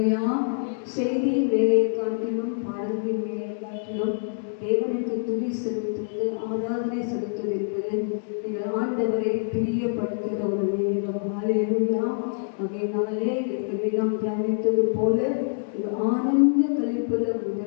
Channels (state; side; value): silent; right; digital silence